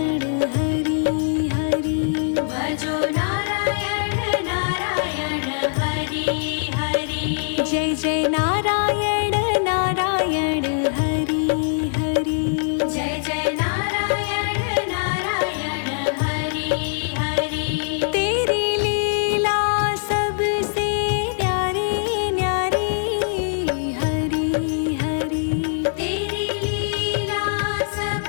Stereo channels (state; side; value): silent; right; 56 dB below the other